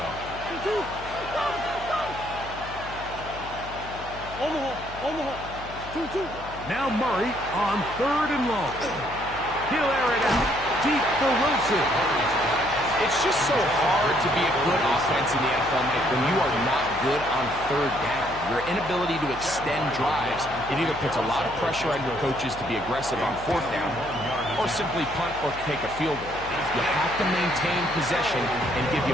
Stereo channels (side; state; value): left; noise; hum, 14 dB below the sound